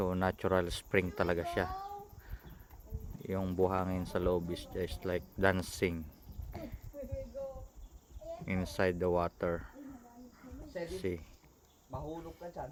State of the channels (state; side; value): identical; both; correlation 1.00